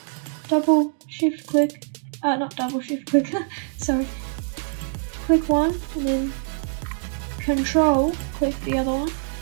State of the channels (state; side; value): silent; left; 63 dB below the other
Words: double shift click, not double shift click, sorry. Click one and then control click the other one.